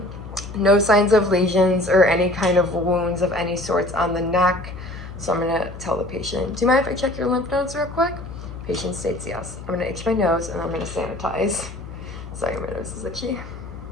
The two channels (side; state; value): left; noise; hum, 12 dB below the sound